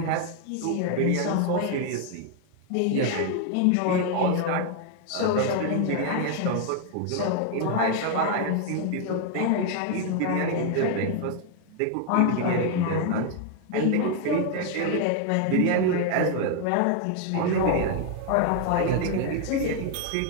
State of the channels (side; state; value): both; different; correlation 0.00